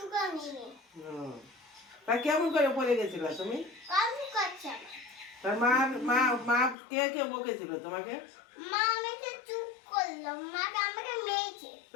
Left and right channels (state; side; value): drops out; right; at 6.8 s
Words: নিয়ে। তা কেমন করে পড়ে গেছিল তুমি? কামড় করছে। তার মা মা মা কে কে বকেছিল তোমাকে? মা আমাকে চুপ করলো, মা আমাকে মেরেছে।